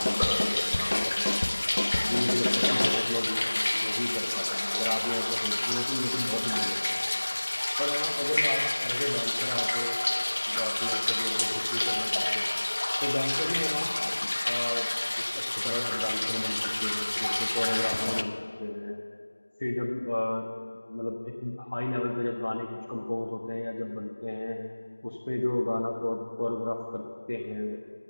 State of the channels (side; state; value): both; inverted; correlation -1.00